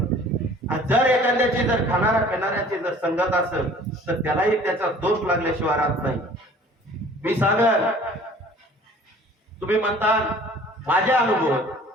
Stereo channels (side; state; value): both; normal; correlation 0.50